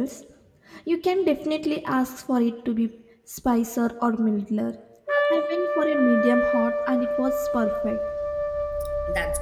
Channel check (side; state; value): both; identical; correlation 1.00